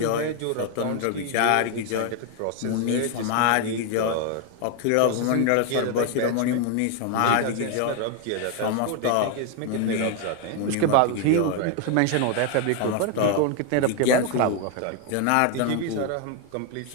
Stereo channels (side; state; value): both; different; correlation 0.01